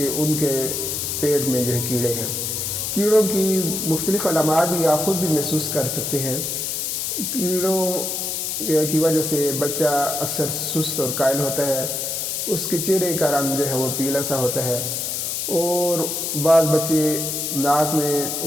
ان کے پیٹ میں جو ہے کیڑے ہیں۔ کیڑوں کی مختلف علامات بھی آپ خود بھی محسوس کر سکتے ہیں۔ کیڑوں کی وجہ سے بچہ اکثر سست اور قائل ہوتا ہے، اس کے چہرے کا رنگ جو ہے وہ پیلا سا ہوتا ہے، اور بعض بچے ناک میں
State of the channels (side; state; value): left; noise; hiss, 2 dB below the sound